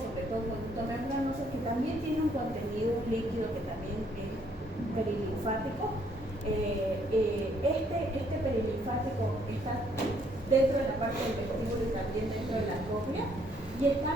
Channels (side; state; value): both; normal; correlation 0.67